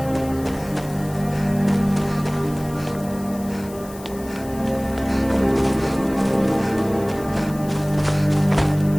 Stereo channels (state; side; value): noise; left; hiss, 19 dB below the sound